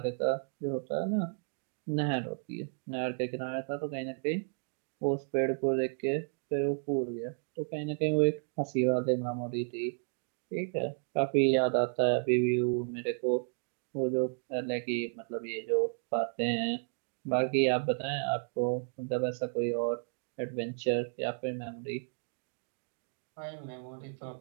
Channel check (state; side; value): silent; left; 56 dB below the other